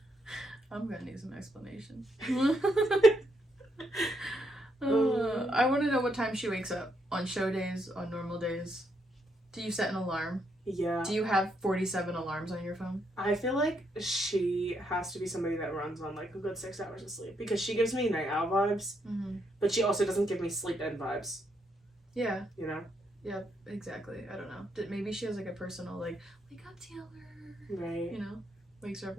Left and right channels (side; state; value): both; normal; correlation 0.77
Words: I'm gonna need some explanation. I want to know what time she wakes up. On show days, on normal days. Do you set an alarm? Yeah. Do you have 47 alarms on your phone? I feel like she has to be somebody that runs on, like, a good 6 hours of sleep. Because she gives me night owl vibes, but she also doesn't give me sleep-in vibes. Yeah. You know? Yeah, exactly. I don't know. Maybe she has, like, a personal, like, wake up, Taylor. Right. You know? Wakes her up